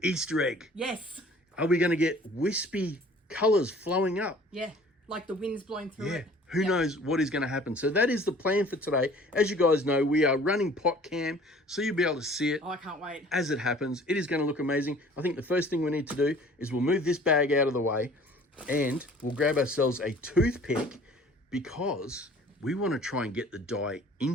Easter egg? Yes. Are we going to get wispy colours flowing up? Yeah. Like the wind's blowing through it. Who knows what is going to happen? So that is the plan for today. As you guys know, we are running pot cam, so you'll be able to see it Oh, I can't wait. as it happens. It is going to look amazing. I think the first thing we need to do is we'll move this bag out of the way and we'll grab ourselves a toothpick because we want to try and get the dye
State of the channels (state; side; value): normal; both; correlation 0.51